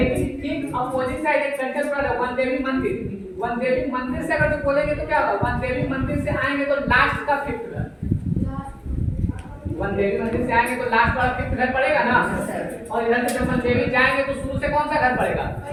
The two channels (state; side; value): identical; both; correlation 1.00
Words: ठीक अपोजिट साइड एक सेंटर पर है वन देवी मंदिर। वन देवी मंदिर से अगर जो बोलेंगे तो क्या होगा? वन देवी मंदिर से आएंगे तो लास्ट का फिफ्थ घर, वन देवी मंदिर से आएंगे तो लास्ट वाला फिफ्थ घर पड़ेगा ना। और इधर से जब वन देवी जाएंगे तो शुरू से कौन सा घर पड़ेगा?